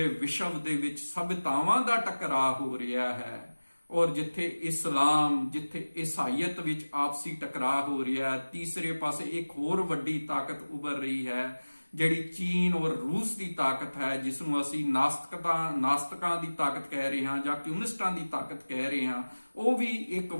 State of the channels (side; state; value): both; inverted; correlation -1.00